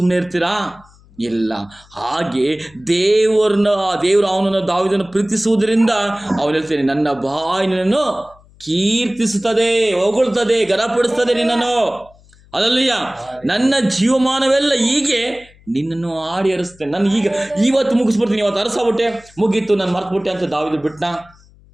ಇರ್ತೀರಾ? ಇಲ್ಲ. ಹಾಗೆ ದೇವರು ಅವನನ್ನು ದಾವೀದನನ್ನು ಪ್ರೀತಿಸುವುದರಿಂದ ಅವನು ಹೇಳ್ತಾನೆ, ನನ್ನ ಬಾಯಿ ನಿನ್ನನ್ನು ಕೀರ್ತಿಸುತ್ತದೆ, ಹೊಗಳ್ತದೆ, ಗರಪಡಿಸ್ತದೆ ನಿನ್ನನ್ನು. ಹಲ್ಲೆಲೂಯ. ನನ್ನ ಜೀವಮಾನವೆಲ್ಲ ಹೀಗೆ ನಿನ್ನನ್ನು ಆಡಿ ಹರಿಸ್ತೇನೆ. ನಾನು ಇವತ್ತು ಮುಗಿಸ್ಬಿಡ್ತೀನಿ, ಇವತ್ತು ಅರಸಾಬಿಟ್ಟೆ, ಮುಗೀತು, ನಾನು ಮರ್ತ್ಬಿಟ್ಟೆ ಅಂತ ದಾವೀದ ಬಿಟ್ನ.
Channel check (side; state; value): left; noise; hum, 27 dB below the sound